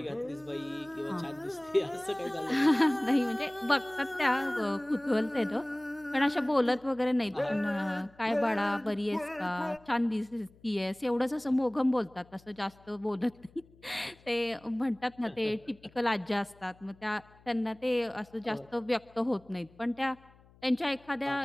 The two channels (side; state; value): left; noise; hum, 27 dB below the sound